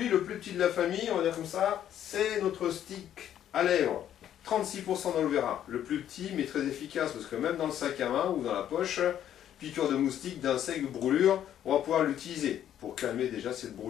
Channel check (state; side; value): quieter; right; 10.6 dB